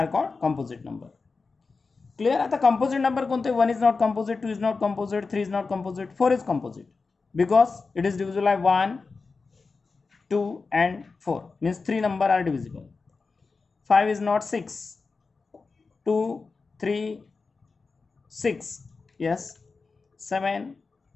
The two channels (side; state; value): right; quieter; 4.3 dB